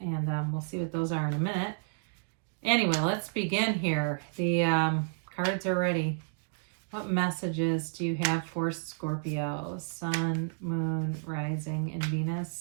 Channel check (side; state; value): left; silent; digital silence